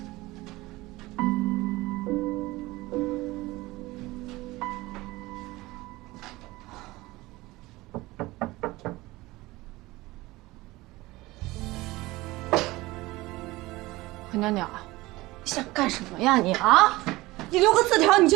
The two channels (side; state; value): left; quieter; 19.9 dB